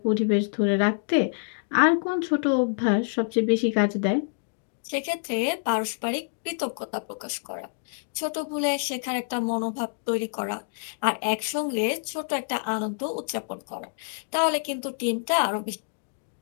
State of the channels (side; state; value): right; silent; digital silence